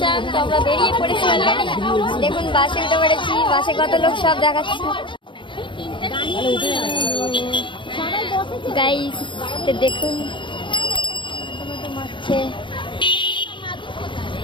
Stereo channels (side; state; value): right; late; 0.24 ms